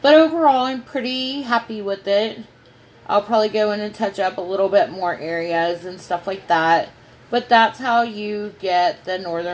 But overall, I'm pretty happy with it. I'll probably go in and touch up a little bit more areas and stuff like that. But that's how you get the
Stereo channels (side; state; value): both; identical; correlation 1.00